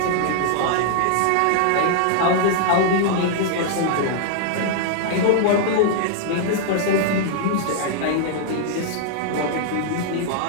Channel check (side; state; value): both; different; correlation -0.01